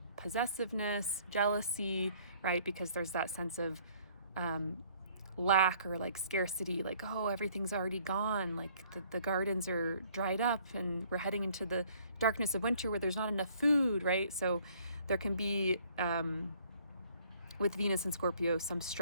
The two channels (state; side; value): inverted; both; correlation -0.60